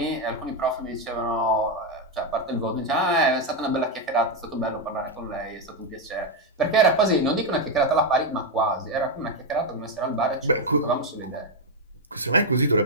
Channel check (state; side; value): normal; both; correlation 0.03